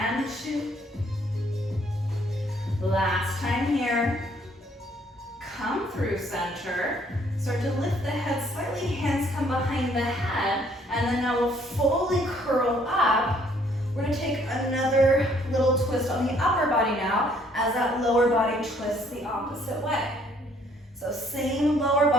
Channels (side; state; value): both; normal; correlation 0.64